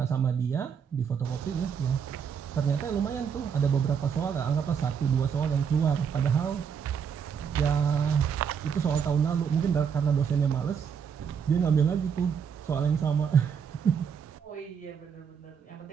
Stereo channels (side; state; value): left; quieter; 7.0 dB